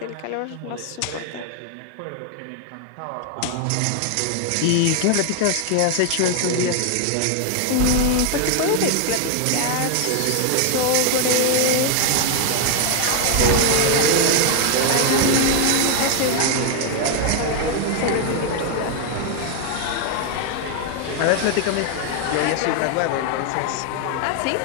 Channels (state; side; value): different; both; correlation 0.00